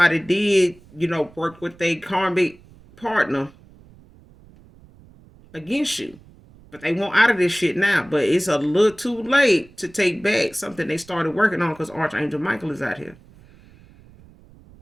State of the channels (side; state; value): right; noise; rumble, 25 dB below the sound